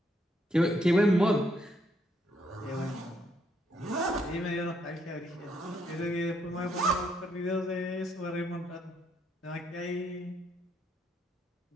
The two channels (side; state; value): both; normal; correlation 0.74